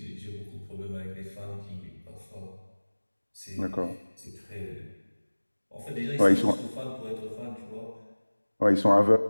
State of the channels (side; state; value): both; inverted; correlation -1.00